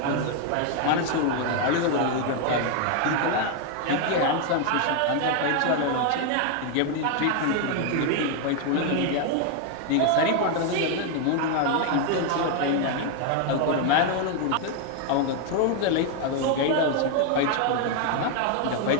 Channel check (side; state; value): both; different; correlation 0.01